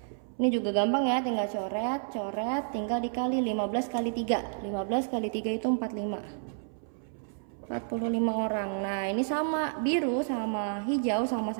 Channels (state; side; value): silent; left; 58 dB below the other